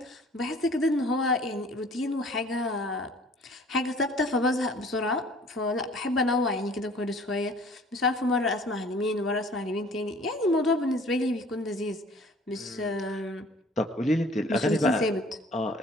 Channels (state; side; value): normal; both; correlation 0.51